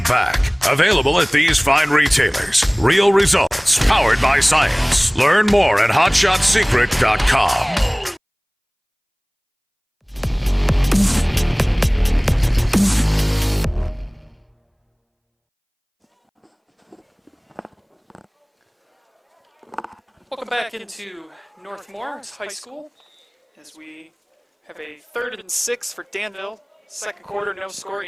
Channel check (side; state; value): both; identical; correlation 1.00